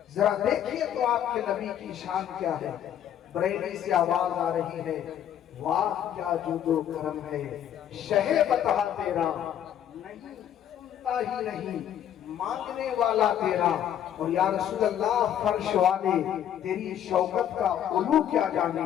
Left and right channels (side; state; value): right; quieter; 10.2 dB